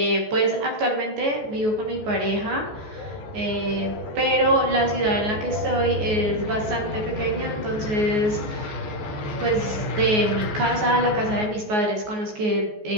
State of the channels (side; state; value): left; late; 14 ms